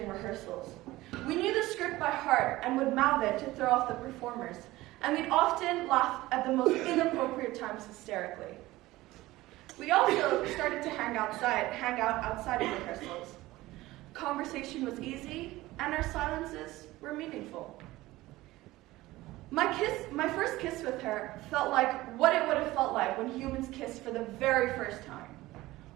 rehearsals. We knew the script by heart and would mouth it to throw off the performers, and we'd often laugh at the most inappropriate times hysterically. We also started to hang out outside of rehearsals. Conversation was easy, and our silences were meaningful. My first kiss with her felt like what it would have felt like when humans kissed for the very first time.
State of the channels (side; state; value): left; quieter; 18.1 dB